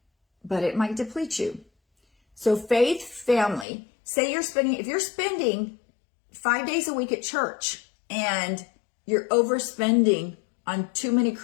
But it might deplete you. So faith, family, say if you're spending 5 days a week at church and you're overspending on too many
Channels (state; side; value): drops out; right; at 3.7 s